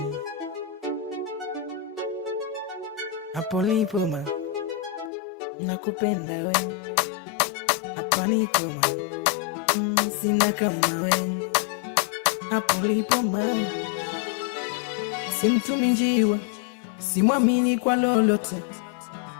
hapo lipo ma nakupenda we, hapa niko ma sina kama we, hapo lipo ma simtumi njiwa, simwamini kwa lolote,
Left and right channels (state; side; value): drops out; right; at 5.1 s